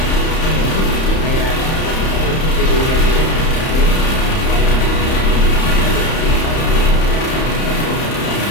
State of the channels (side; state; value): right; late; 31 ms